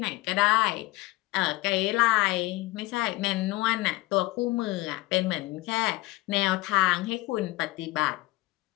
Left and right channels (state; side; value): quieter; right; 19.9 dB